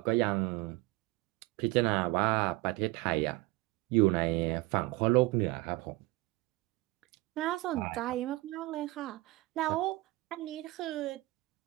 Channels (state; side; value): quieter; left; 20.2 dB